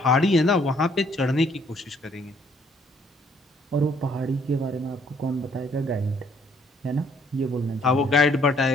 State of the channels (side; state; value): both; normal; correlation 0.64